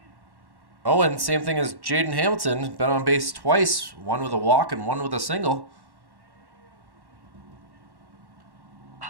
Owen, same thing as Jaden Hamilton, been on base twice, 1 with a walk and 1 with a single.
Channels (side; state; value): left; late; 1.1 ms